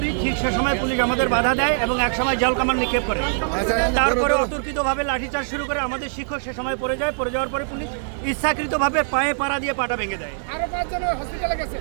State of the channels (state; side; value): silent; left; digital silence